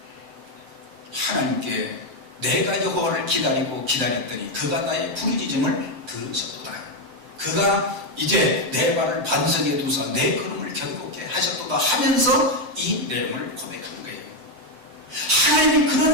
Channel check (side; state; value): left; late; 7.9 ms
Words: 하나님께 내가 여호와를 기다리고 기다렸더니 그가 나의 부르짖음을 들으셨도다. 그가 이제 내 발을 반석에 두사 내 걸음을 견고케 하셨도다 하면서 이 내용을 고백한 거예요. 하나님이